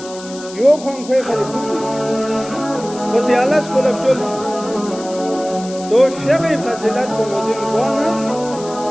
یو کھن کھوئے خری کھوئی خوشی اللہ سکولب چل تو شیخی فضیلت کو مدین کوانا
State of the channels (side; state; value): left; noise; hiss, 16 dB below the sound